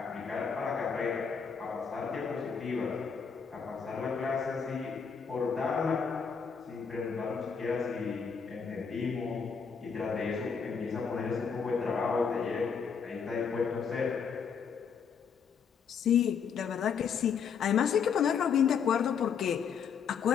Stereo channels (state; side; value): quieter; right; 6.4 dB